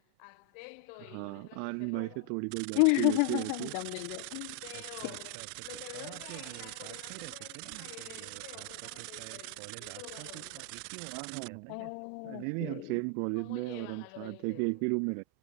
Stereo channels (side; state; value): both; different; correlation 0.00